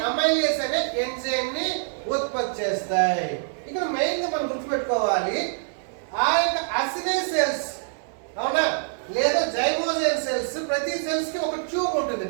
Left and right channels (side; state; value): left; silent; digital silence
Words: అమైలేస్ అనే ఎంజైమ్ ని ఉత్పత్తి చేస్తాయి. ఇక్కడ మెయిన్ గా మనం గుర్తుపెట్టుకోవాలి, ఆ యొక్క అసినే సెల్స్, అవునా, లేదా జైమోజన్ సెల్స్, ప్రతి సెల్స్ కి ఒక ట్యూబ్ ఉంటుంది,